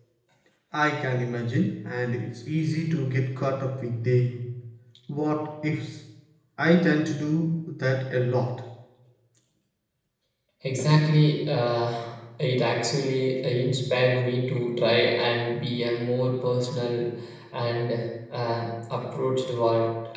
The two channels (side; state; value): both; identical; correlation 1.00